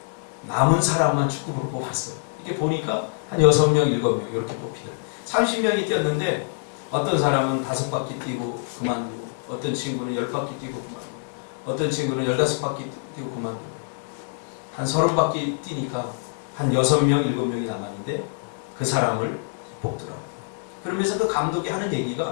남은 사람만 축구부로 뽑았어요. 이게 보니까 한 6명, 7명 이렇게 뽑히더라고요. 30명이 뛰었는데 어떤 사람은 5바퀴 뛰고 그만두고, 어떤 친구는 10바퀴 뛰고 그만두고, 어떤 친구는 15바퀴 뛰고 그만두고, 한 30바퀴 뛰니까 한 6명, 7명이 남았는데 그 사람을 뽑더라고요. 그러면서 그 감독이 하는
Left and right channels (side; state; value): right; silent; digital silence